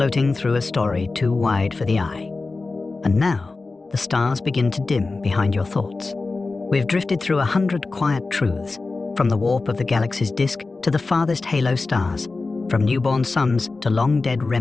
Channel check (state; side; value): quieter; right; 3.7 dB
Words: through a story too wide for the eye. And now, the stars begin to dim behind your thoughts. We've drifted through 100 quiet truths, from the warp of the galaxy's disk to the farthest halo stars, from newborn suns to long-dead